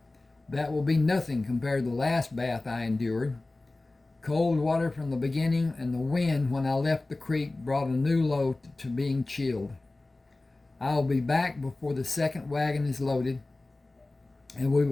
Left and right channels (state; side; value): quieter; right; 3.0 dB